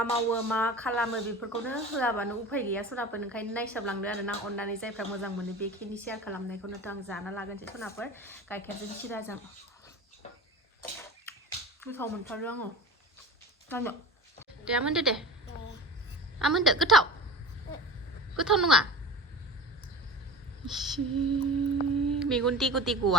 मावो मा खालामो बेफोरखौनो होआबानो उफाय गैया सनाफोर ओंखायनो नायसाबलांदो आरोना अननानै जायफ्रा मोजां मोनो बेखिनि शेयार खालामनायखौनोथ' आं जाना लागोनसै सनाफोर गाइखेरजों सिराजों गोथाव मोनथारो आङो जानो दे आमोनदो दे आमोनदो गोथाव नङा मेगन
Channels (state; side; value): normal; both; correlation 0.35